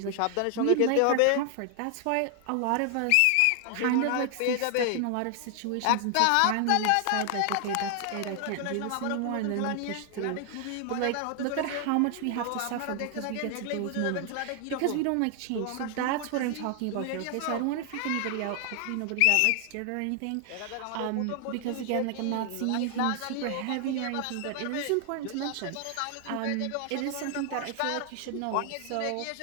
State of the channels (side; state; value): both; different; correlation 0.00